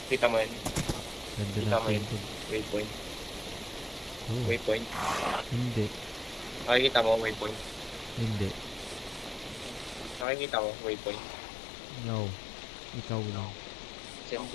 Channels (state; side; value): drops out; right; at 10.2 s